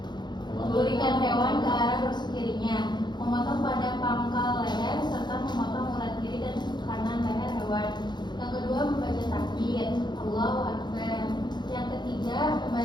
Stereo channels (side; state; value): right; late; 0.21 ms